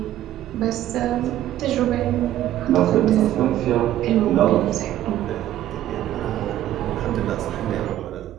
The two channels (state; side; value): quieter; left; 13.0 dB